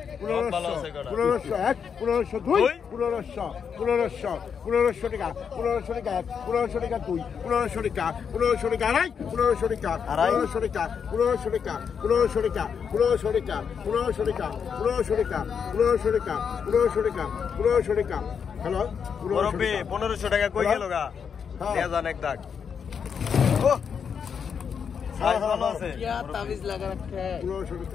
1500 টাকা কই গেল গা নেজান এক দাগ ও সাইজ ভালো আছে তাবিজ লাগা রাখে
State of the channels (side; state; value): right; quieter; 6.9 dB